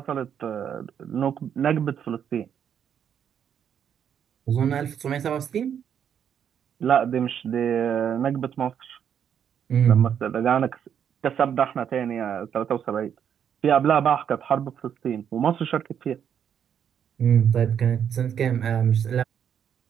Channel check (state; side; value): quieter; left; 8.6 dB